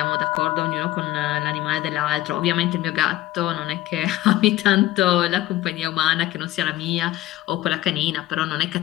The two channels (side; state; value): right; quieter; 15.7 dB